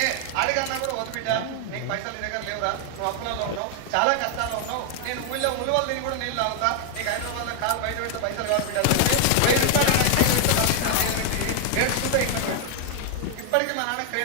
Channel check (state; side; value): different; both; correlation 0.00